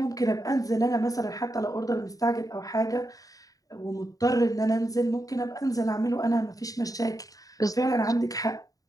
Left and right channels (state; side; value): late; right; 0.17 ms